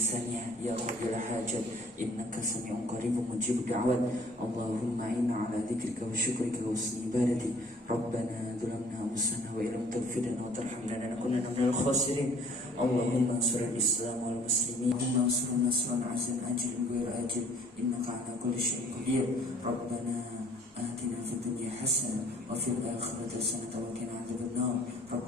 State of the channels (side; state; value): both; normal; correlation 0.56